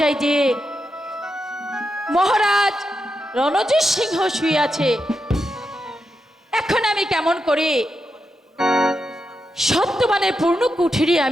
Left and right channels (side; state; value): both; normal; correlation 0.86